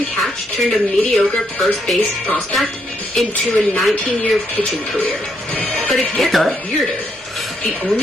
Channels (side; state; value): both; normal; correlation 0.75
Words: catch turned a mediocre first base prospect into a 19-year pitching career. But it gets Okay. weirder. The